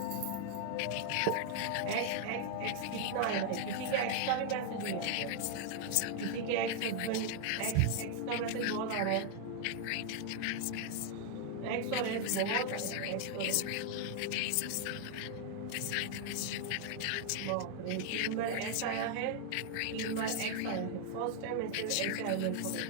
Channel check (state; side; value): different; both; correlation 0.00